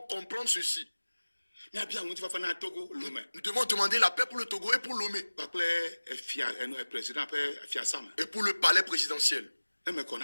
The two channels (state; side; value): inverted; both; correlation -1.00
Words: comprendre ceci. Nous devons demander la paix pour le Togo et pour Lomé. Et pour le palais présidentiel.